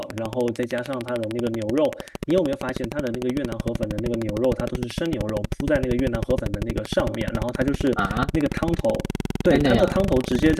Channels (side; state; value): both; identical; correlation 1.00